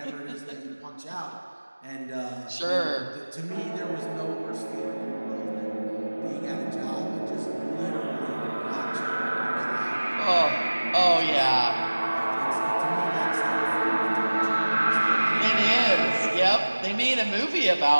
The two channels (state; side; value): inverted; both; correlation -1.00